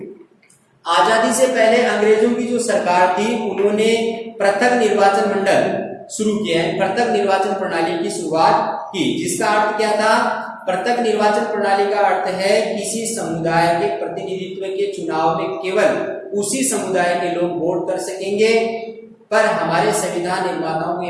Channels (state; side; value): identical; both; correlation 1.00